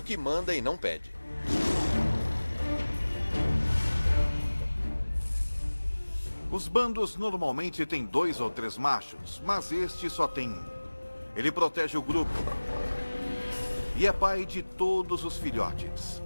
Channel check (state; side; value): inverted; both; correlation -1.00